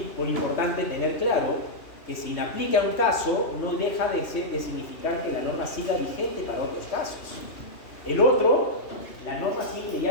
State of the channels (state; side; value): late; right; 2.8 ms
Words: importante tener claro que si inaplica un caso, no deja de significar que la norma siga vigente para otros casos. El otro, la norma simple y